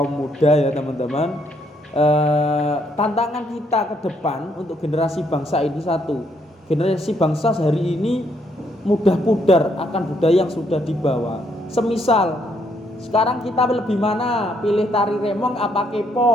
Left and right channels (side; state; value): both; normal; correlation 0.72